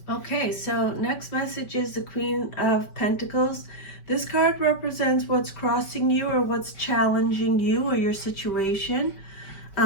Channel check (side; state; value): right; late; 5.2 ms